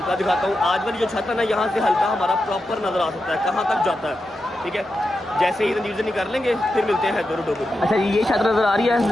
دکھاتا ہوں. آج والی جو چھت ہے نا, یہاں سے ہلکا ہمارا پراپر نظر آ سکتا ہے کہاں تک جاتا ہے, ٹھیک ہے. جیسے ہی زنجیر زنی کر لیں گے پھر ملتے ہیں حیدر ڈوگر. اچھا جی, یہ چھت نظر آ رہی ہے.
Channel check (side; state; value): both; normal; correlation 0.89